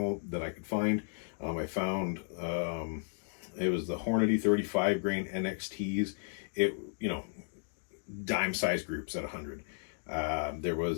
that I could find. I found it was the Hornady 35 grain NXTs. It, dime size groups at 100. There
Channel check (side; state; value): right; silent; 55 dB below the other